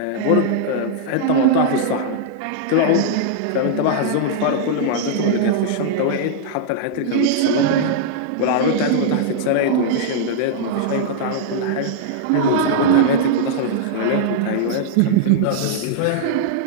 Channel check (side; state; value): both; different; correlation -0.02